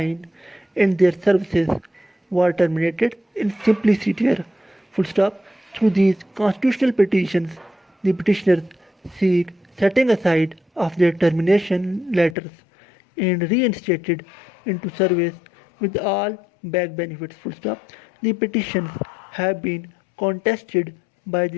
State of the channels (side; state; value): right; drops out; at 12.4 s